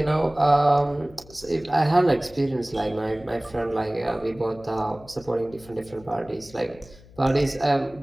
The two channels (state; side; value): noise; left; hum, 23 dB below the sound